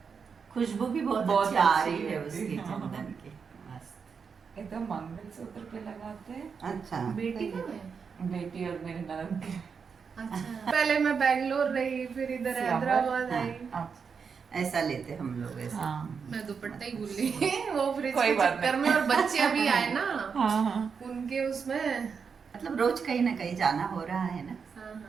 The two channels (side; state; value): left; quieter; 6.0 dB